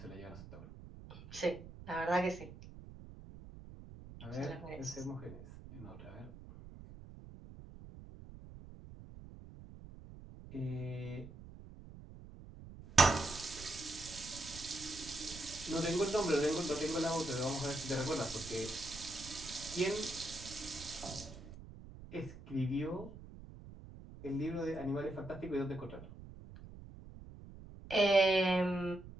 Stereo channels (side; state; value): right; noise; rumble, 15 dB below the sound